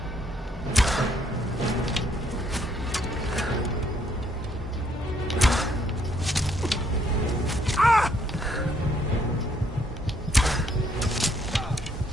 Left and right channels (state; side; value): normal; both; correlation 0.69